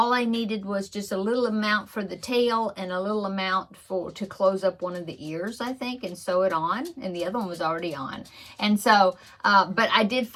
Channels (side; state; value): both; identical; correlation 1.00